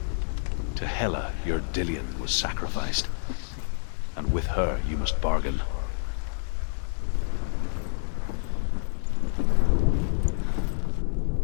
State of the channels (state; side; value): silent; right; digital silence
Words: To Hela, your Dillion was sacrificed, and with her you must bargain.